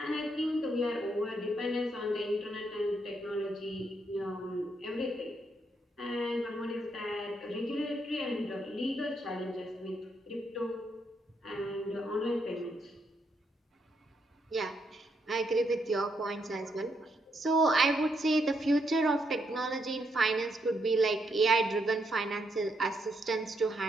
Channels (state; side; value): normal; both; correlation 0.78